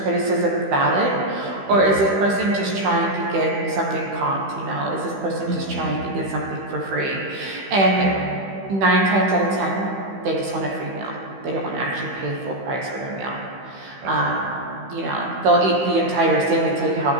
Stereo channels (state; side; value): late; left; 15 ms